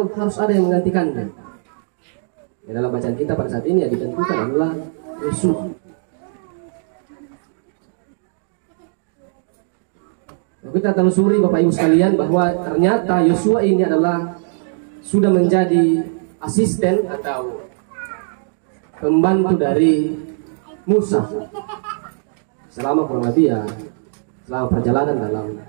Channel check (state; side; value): silent; left; digital silence